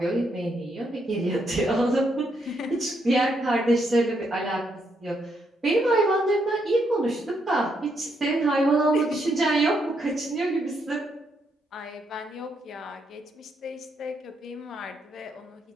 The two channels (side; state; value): both; normal; correlation 0.77